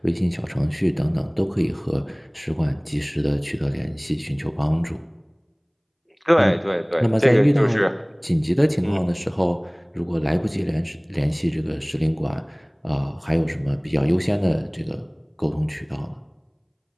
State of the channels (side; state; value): both; identical; correlation 1.00